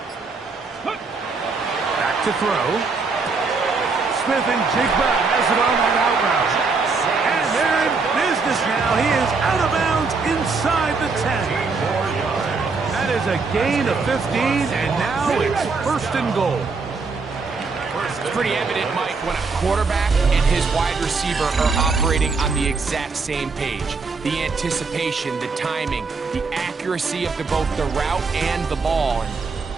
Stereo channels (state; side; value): quieter; left; 4.4 dB